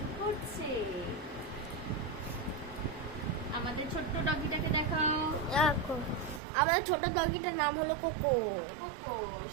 করছে। আমাদের ছোট্ট ডগিটাকে দেখাও। দেখো আমার ছোট ডগিটার নাম হলো কোকো। কোকো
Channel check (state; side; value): drops out; left; at 6.4 s